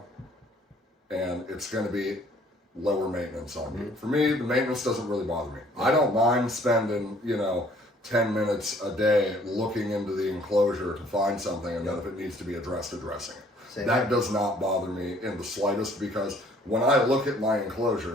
and it's going to be lower maintenance on you. For me, the maintenance doesn't really bother me. I don't mind spending, 10 minutes a day looking into the enclosure to find something, and then if it needs to be addressed, addressing it. That does not bother me in the slightest, because when I look at my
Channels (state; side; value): normal; both; correlation 0.58